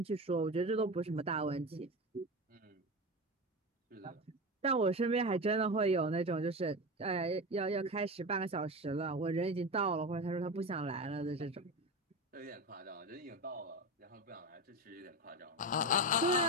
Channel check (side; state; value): both; normal; correlation 0.23